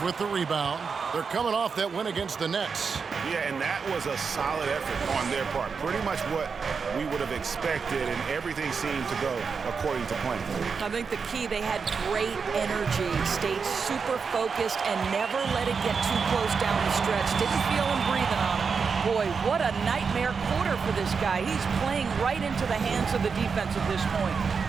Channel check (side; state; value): left; quieter; 5.5 dB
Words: with the rebound. They're coming off that win against the Nets. Yeah, and that was a solid effort on their part. Pretty much what we would have expected, and everything seemed to go according to plan. I think the key, they had great energy, stayed super focused, and never let it get too close down the stretch. Didn't feel him breathing on him. Boy, what a nightmare quarter for this guy. He's playing right into the hands of the defense at this point.